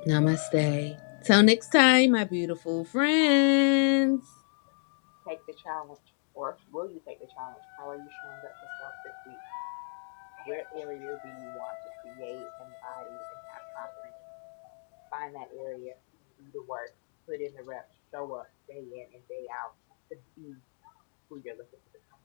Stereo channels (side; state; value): right; silent; digital silence